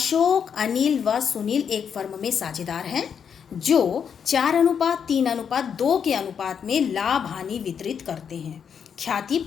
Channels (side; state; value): right; quieter; 7.4 dB